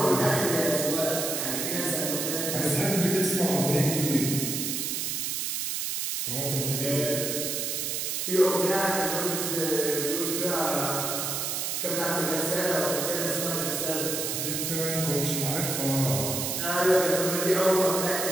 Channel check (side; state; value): right; noise; hiss, 1 dB below the sound